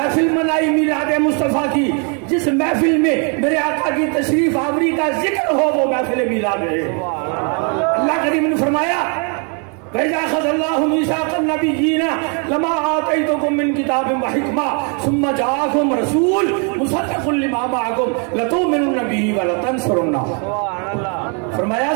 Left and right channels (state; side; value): quieter; left; 37.9 dB